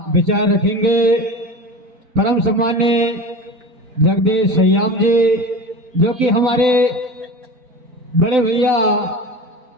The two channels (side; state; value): left; late; 4.0 ms